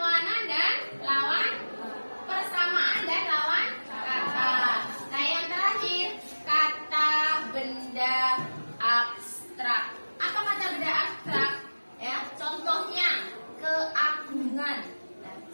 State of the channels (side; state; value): both; inverted; correlation -1.00